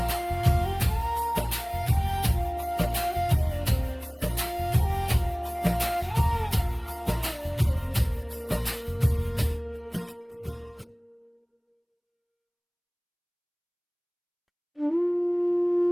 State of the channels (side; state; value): both; identical; correlation 1.00